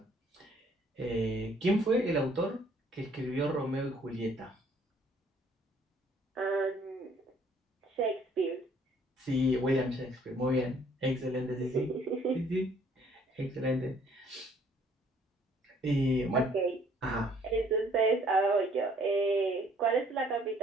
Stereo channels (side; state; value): both; normal; correlation 0.61